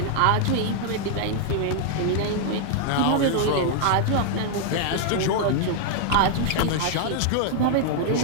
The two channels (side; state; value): both; different; correlation 0.00